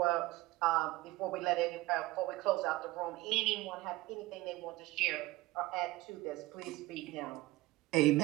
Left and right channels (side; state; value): left; quieter; 18.8 dB